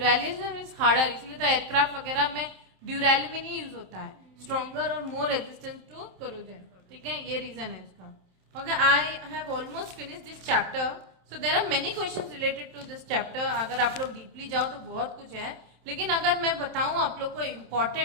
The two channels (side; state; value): left; late; 27 ms